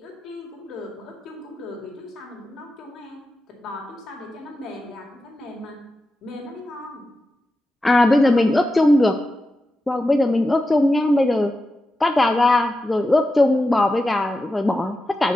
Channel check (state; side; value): normal; both; correlation 0.91